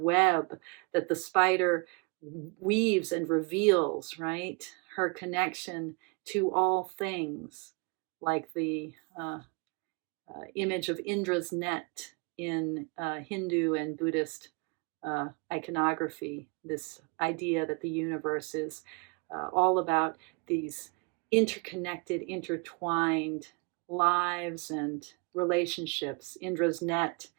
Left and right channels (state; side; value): quieter; left; 32.1 dB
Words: that the spider weaves and reveals, right? Her connection to all things, like the image of Indra's net in Hindu and Buddhist iconography, this idea that the universe is all about these interconnected, intertwined lives and relationships. Indra's net